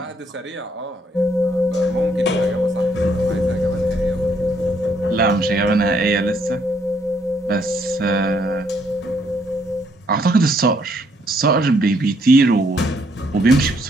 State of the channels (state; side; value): normal; both; correlation 0.69